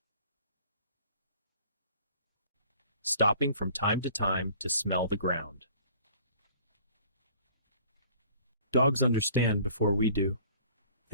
stopping from time to time to smell the ground. Dogs understand before we do.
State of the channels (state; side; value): inverted; both; correlation -0.51